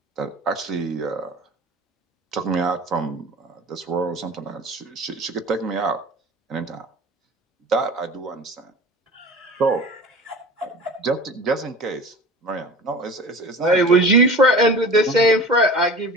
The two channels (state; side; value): normal; both; correlation 0.38